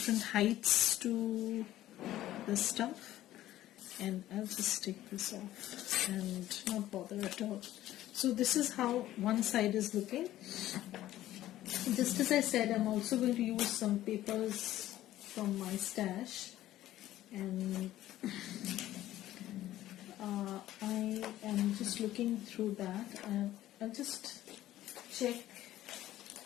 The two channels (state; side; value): quieter; right; 14.1 dB